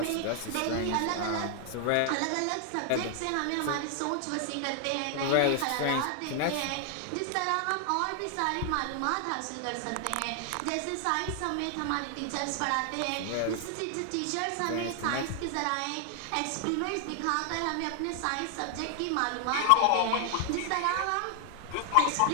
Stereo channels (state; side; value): different; both; correlation 0.00